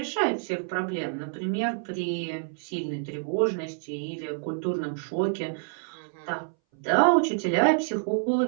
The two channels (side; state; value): left; silent; 60 dB below the other